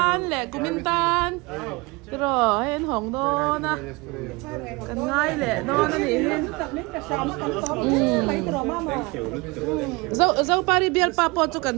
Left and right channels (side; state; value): left; quieter; 25.2 dB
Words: le kumintan. rồi hen hồng đó na cần ngay lệ đó nó thì hen dâu pari biar papo cho